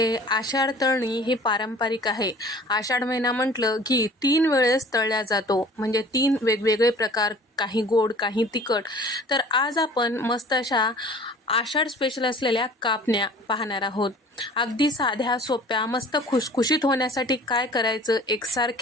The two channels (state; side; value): normal; both; correlation 0.47